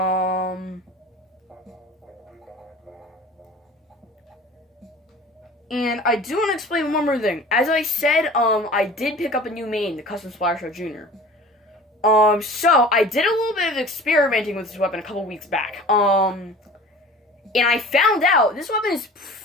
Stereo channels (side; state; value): both; normal; correlation 0.42